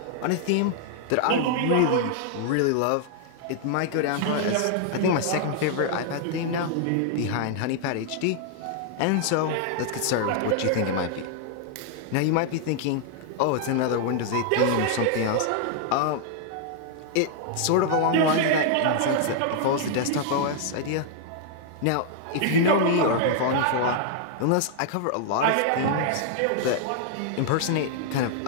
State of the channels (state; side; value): different; both; correlation -0.01